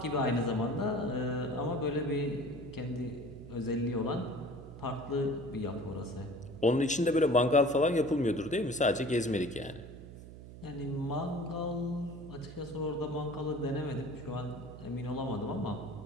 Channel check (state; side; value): noise; right; hum, 14 dB below the sound